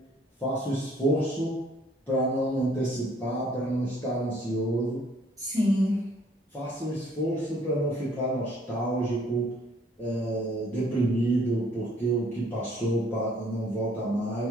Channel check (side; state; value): both; normal; correlation 0.60